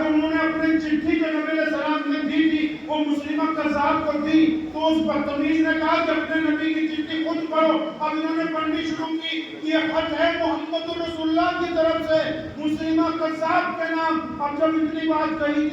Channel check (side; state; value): both; identical; correlation 1.00